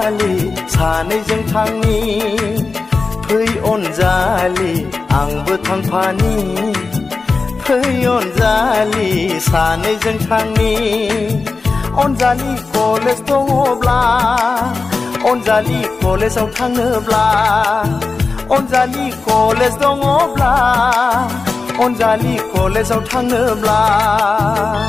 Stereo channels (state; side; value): quieter; right; 4.1 dB